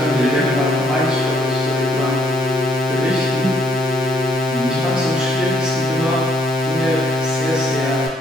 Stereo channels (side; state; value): both; normal; correlation 0.68